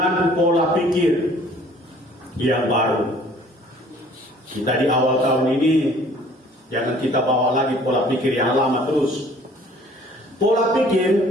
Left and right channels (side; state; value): both; normal; correlation 0.54